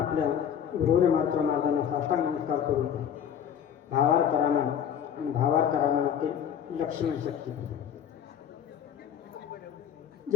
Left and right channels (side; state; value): right; quieter; 8.9 dB